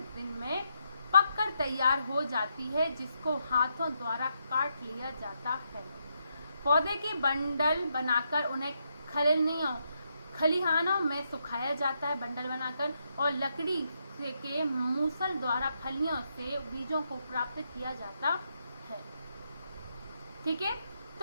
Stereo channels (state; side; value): inverted; both; correlation -0.80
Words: दिन में पककर तैयार हो जाती है, जिसको हाथों द्वारा काट लिया जाता है। पौधे के बंडल बनाकर उन्हें खलिहानों में सुखाया जाता है, बंडल बनाकर, और लकड़ी के मूसल द्वारा फलियों से बीजों को प्राप्त किया जाता है, ठीक है।